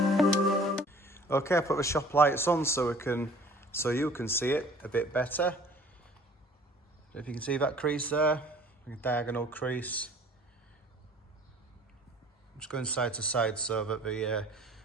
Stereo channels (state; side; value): normal; both; correlation 0.51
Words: Okay, I put the shop lights on so you can see it a bit better. If you can see that crease there, a diagonal crease. I'm just going side to side so that the